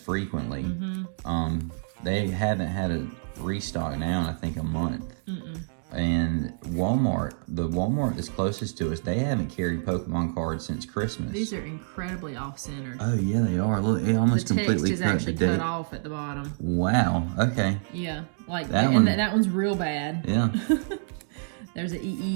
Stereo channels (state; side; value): silent; left; digital silence